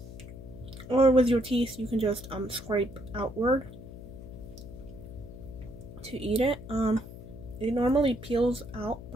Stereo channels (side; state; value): left; noise; hum, 13 dB below the sound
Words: or with your teeth you can just scrape outward to eat it. It normally peels out